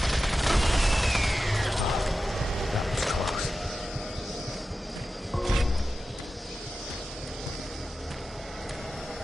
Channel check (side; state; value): both; normal; correlation 0.93